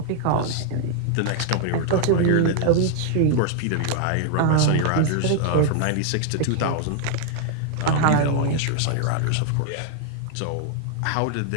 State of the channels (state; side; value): different; both; correlation 0.00